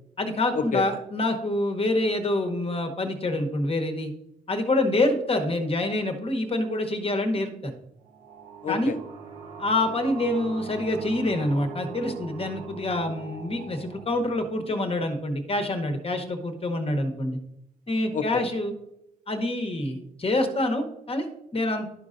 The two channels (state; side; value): normal; both; correlation 0.62